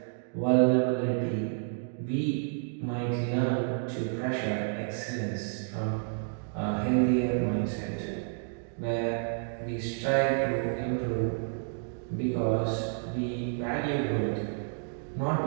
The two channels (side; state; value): left; silent; digital silence